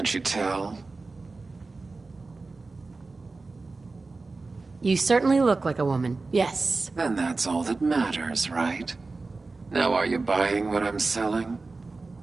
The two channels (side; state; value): left; quieter; 3.7 dB